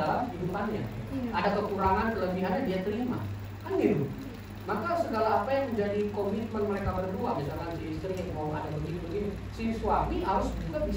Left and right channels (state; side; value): identical; both; correlation 1.00